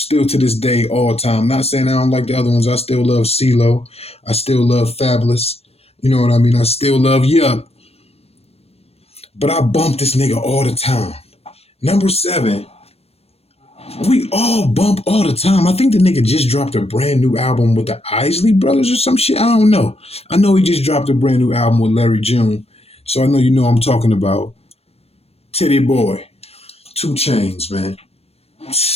to this day, all time. Not saying I don't like the other ones. I still love CeeLo. I still love Fabolous. You know what I mean? I still love Yup. But I bump this nigga all the time. Number 7, we all bump all the time. I think the nigga just dropped a brand new album with the Isley Brothers or some shit. I don't know. I know he just dropped a brand new album with Larry June. So I know you know I'm talking about Titty Boy, 2 Chainz, man.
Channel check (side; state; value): right; late; 0.29 ms